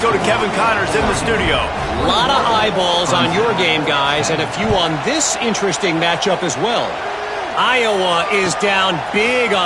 to Kevin Connors in the studio. A lot of eyeballs on your game, guys, and a few on this interesting matchup as well. Iowa is down big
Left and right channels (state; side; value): identical; both; correlation 1.00